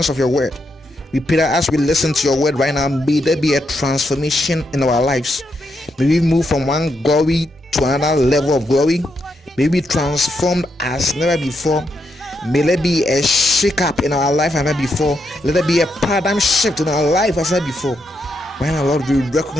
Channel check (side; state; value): both; normal; correlation 0.81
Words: of your word. We pray that as we listen to your word right now, may there be a transformation in our lives. May we move from one glory to another level of glory. May we be transformed as never before. May there be a shake up in our life as never before. Let there be a paradigm shift in our life as never before. Right now, Lord, we